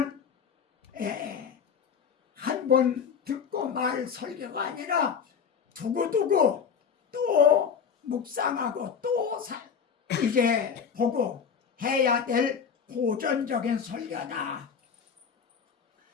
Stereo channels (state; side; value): quieter; right; 6.8 dB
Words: 한 번 듣고 말 설교가 아니라 두고두고 또 묵상하고 또 이제 보고 해야 될 고전적인 설교다.